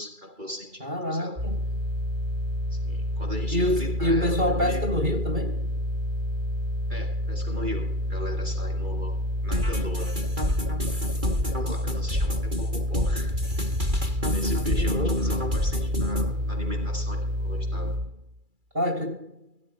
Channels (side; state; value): left; late; 2.3 ms